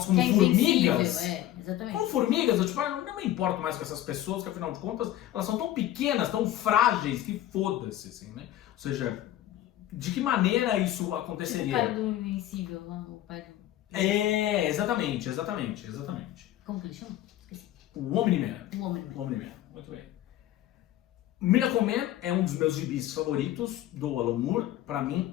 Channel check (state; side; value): quieter; right; 13.3 dB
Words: como que é formigas? Exatamente. Como formigas, eu tipo, não me importo mais com essas pessoas, que afinal de contas, elas são tão pequenas, tão frágeis, que foda-se, assim, né? Ou seja, de que maneira isso aconteceria? Tipo o cara do Invencível, o pai do... exatamente. Como que ele chama? Esqueci. O Omni-Man. Omni-Man. Muito bem. Miracle Man é um dos meus gibis favoritos do Alan Moore. Pra mim